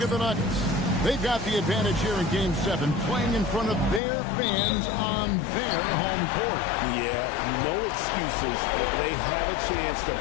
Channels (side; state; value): right; drops out; at 4.0 s